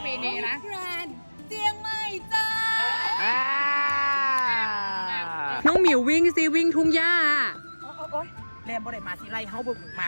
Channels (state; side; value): inverted; both; correlation -1.00